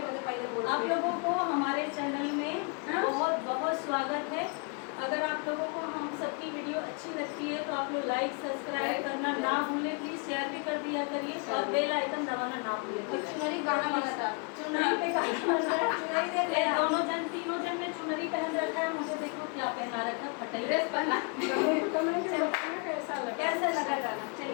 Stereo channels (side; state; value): right; quieter; 35.0 dB